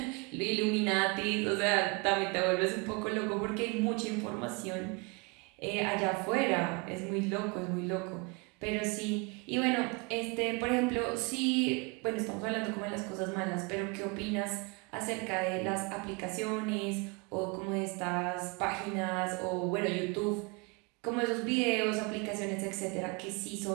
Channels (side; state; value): left; quieter; 30.2 dB